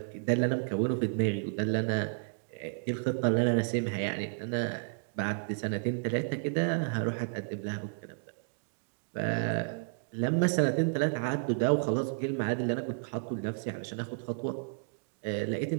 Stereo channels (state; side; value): silent; left; digital silence